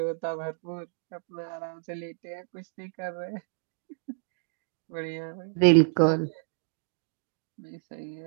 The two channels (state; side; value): silent; left; digital silence